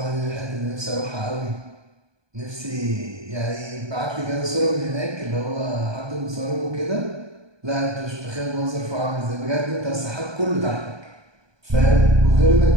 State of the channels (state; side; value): late; left; 1.2 ms